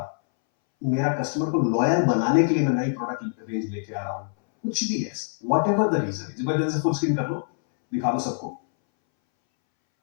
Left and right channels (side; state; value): right; silent; 62 dB below the other